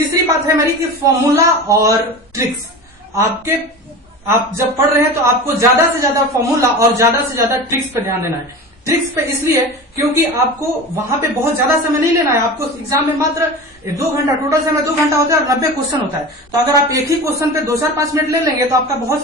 बात है मेरी कि फॉर्मूला और ट्रिक्स। आप जब पढ़ रहे हैं तो आपको ज्यादा से ज्यादा फॉर्मूला और ज्यादा से ज्यादा ट्रिक्स पे ध्यान देना है। ट्रिक्स पे इसलिए क्योंकि आपको वहां पे बहुत ज्यादा समय नहीं लेना है। आपको एग्जाम में मात्र 2 घंटा, टोटल समय 2 घंटा होता है और 90 क्वेश्चन होता है। तो अगर आप एक ही क्वेश्चन पे 2-4-5 मिनट ले लेंगे तो आपका बहुत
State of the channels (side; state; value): both; normal; correlation 0.31